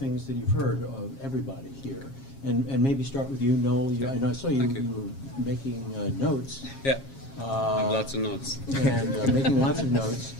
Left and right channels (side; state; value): right; late; 7.4 ms